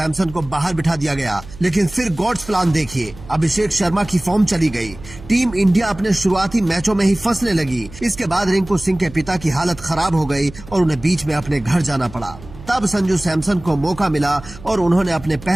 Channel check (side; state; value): right; noise; hum, 17 dB below the sound